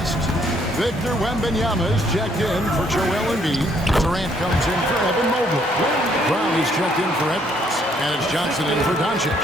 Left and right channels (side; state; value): both; normal; correlation 0.68